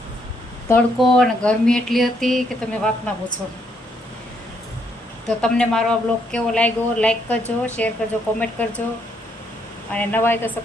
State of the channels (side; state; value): both; normal; correlation 0.73